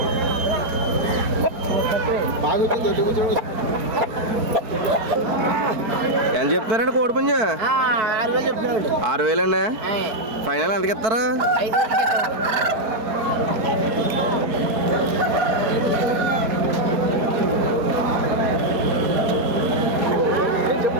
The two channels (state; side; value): late; left; 4.5 ms